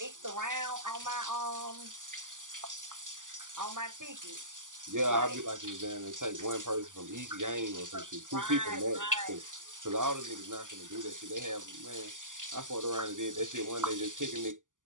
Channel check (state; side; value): late; left; 0.87 ms